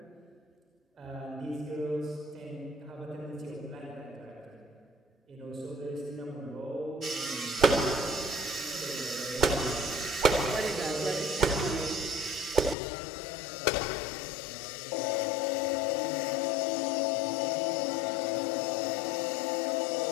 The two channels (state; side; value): drops out; right; at 12.8 s